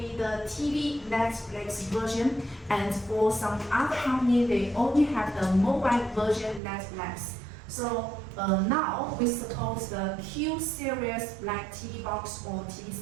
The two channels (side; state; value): left; drops out; at 6.6 s